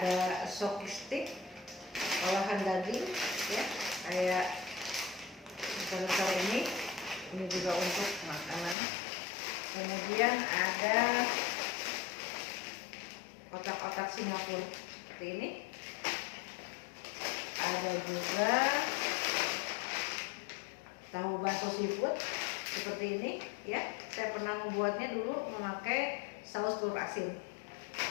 soki stick olahan daging ya, kayak besar-besar ini juga untuk makanan. Kemudian ada otak-otak Singapura seperti ini. Ada juga tahu bakso seafood seperti ini ya. Saya pernah membuatnya dulu memakai saus telur asin.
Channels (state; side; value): drops out; right; at 8.8 s